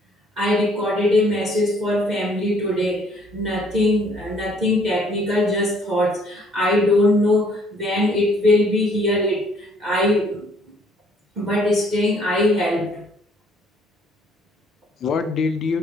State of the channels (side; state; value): both; normal; correlation 0.62